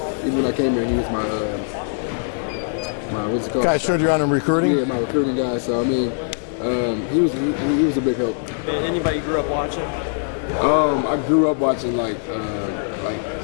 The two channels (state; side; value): silent; right; digital silence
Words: when I came here, he was my what's it called? Guys turned you on in recruiting? Yeah, my recruiting guy. So I mean, he was a big help. Anybody you grew up watching? I grew up watching like a